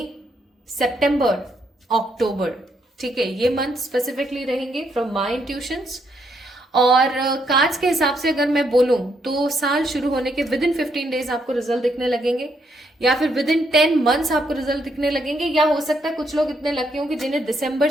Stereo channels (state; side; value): normal; both; correlation 0.75